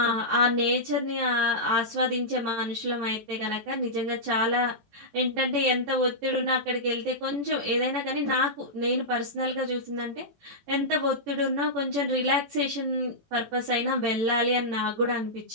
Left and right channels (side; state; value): left; late; 18 ms